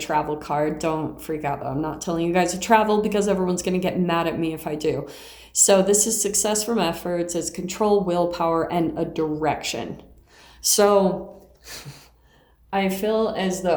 card. Don't freak out though. I'm not telling you guys to travel because everyone's going to get mad at me if I do. So this is success from efforts, it's control, willpower, and a direction. So I feel as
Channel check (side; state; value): both; identical; correlation 1.00